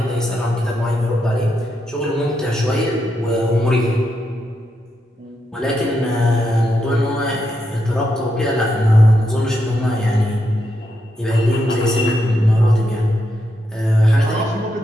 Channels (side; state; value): both; normal; correlation 0.82